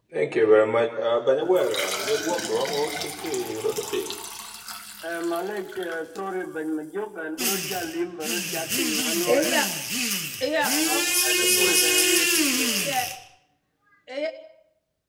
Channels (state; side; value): identical; both; correlation 1.00